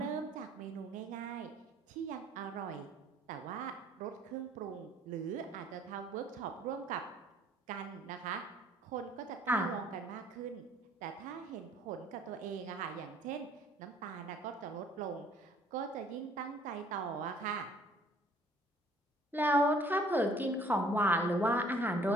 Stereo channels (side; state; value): both; normal; correlation 0.58